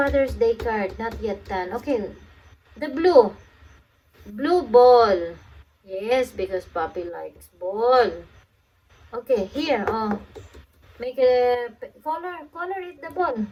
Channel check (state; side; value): identical; both; correlation 1.00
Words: Day card. Not yet done. Okay. The blue. Blue ball. Yes, because Papi likes ball. Okay, here. Oh. Make a color it the ball.